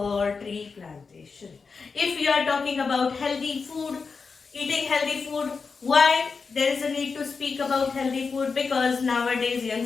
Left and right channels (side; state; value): right; quieter; 4.9 dB